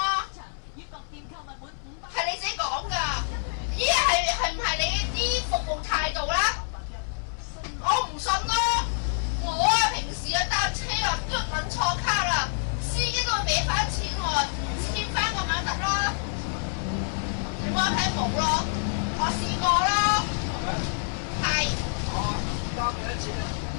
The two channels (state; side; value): silent; right; 60 dB below the other